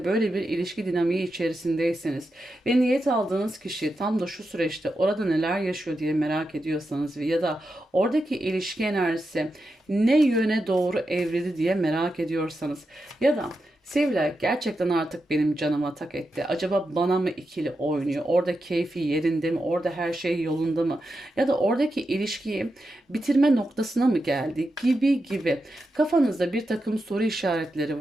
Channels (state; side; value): normal; both; correlation 0.88